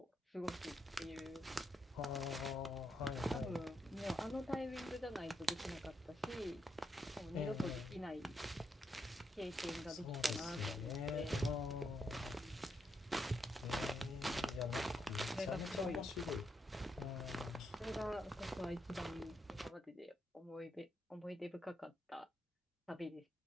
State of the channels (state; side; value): normal; both; correlation 0.80